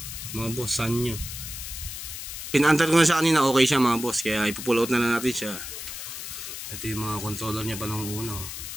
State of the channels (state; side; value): noise; left; hiss, 8 dB below the sound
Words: mga boss, Sanyo. Pinaantar ko na siya kanina, okay siya mga boss, kaya ipupull out na lang natin siya. Ito yung mga controller niya pa nung una.